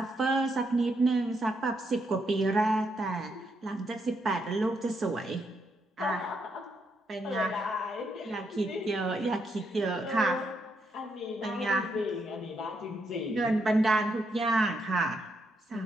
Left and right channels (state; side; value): normal; both; correlation 0.78